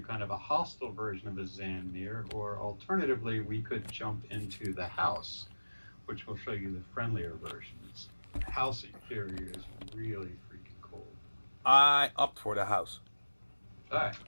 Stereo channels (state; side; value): inverted; both; correlation -1.00